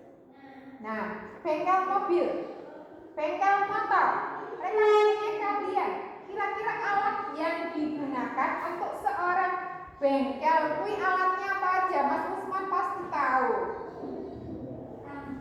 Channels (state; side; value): identical; both; correlation 1.00